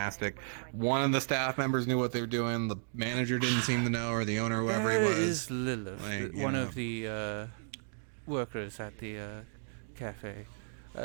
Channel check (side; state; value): left; silent; digital silence